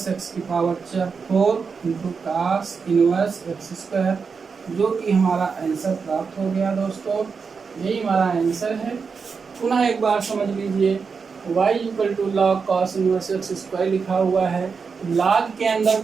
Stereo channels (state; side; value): quieter; left; 5.4 dB